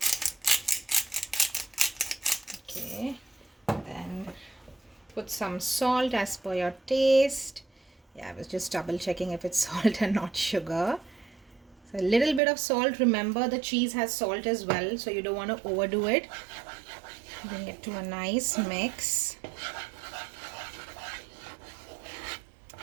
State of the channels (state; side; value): drops out; left; at 12.4 s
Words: Then put some salt as per your taste. Yeah, I was just double checking if it's salt and not sugar. So a little bit of salt. Remember, the cheese has salt as well, so you don't want to overdo it. Bring it to a nice mix.